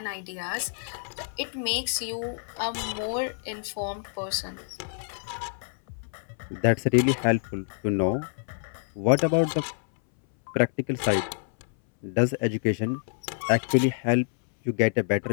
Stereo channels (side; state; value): right; silent; 60 dB below the other